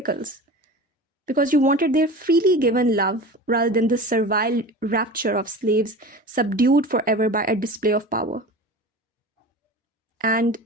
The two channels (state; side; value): normal; both; correlation 0.34